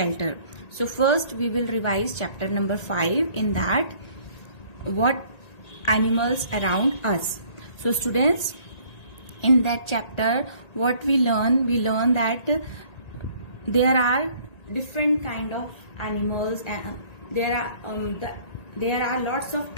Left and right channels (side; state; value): right; late; 1.8 ms